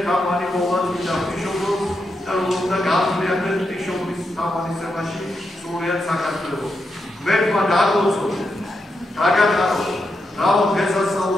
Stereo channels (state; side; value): normal; both; correlation 0.85